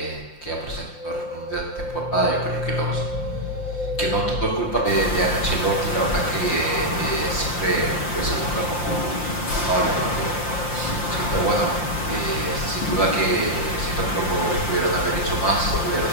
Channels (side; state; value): right; late; 5.7 ms